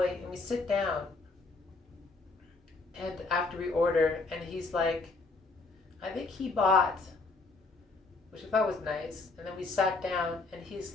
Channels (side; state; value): right; quieter; 3.7 dB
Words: and we sit down, and after we order, and he's like, I think he bought, which I thought was nice, and then we sat down, and he's